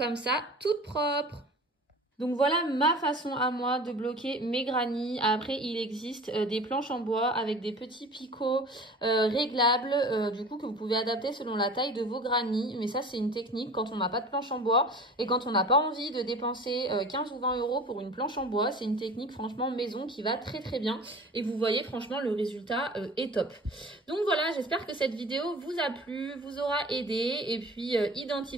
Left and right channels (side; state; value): both; normal; correlation 0.40